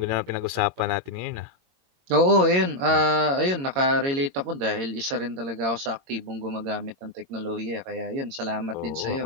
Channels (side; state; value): left; late; 22 ms